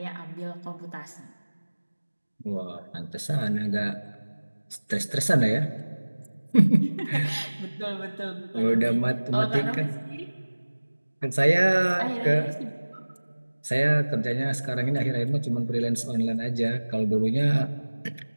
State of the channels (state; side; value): inverted; both; correlation -1.00